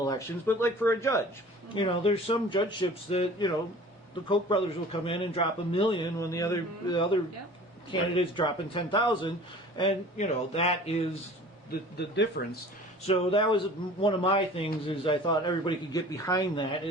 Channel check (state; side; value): normal; both; correlation 0.45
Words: elections, but like for a judge, you know, there's some judgeships that, you know, the Koch brothers will come in and drop $1 million when the other candidates dropping 10,000, and you know that is the difference. So that was one of my things. Is I thought everybody could get behind that.